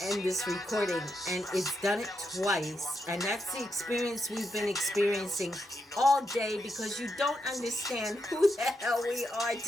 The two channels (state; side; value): normal; both; correlation 0.83